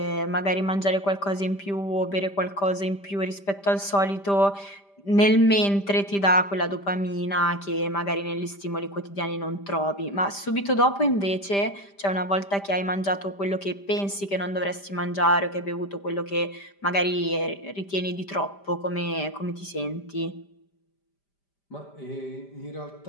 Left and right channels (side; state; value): right; late; 5.0 ms